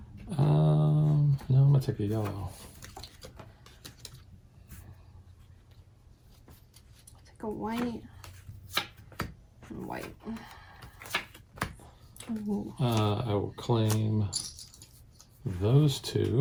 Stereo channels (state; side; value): identical; both; correlation 1.00